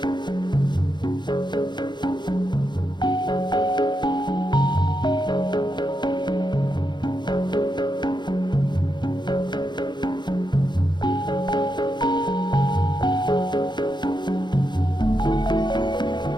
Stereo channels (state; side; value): late; right; 0.21 ms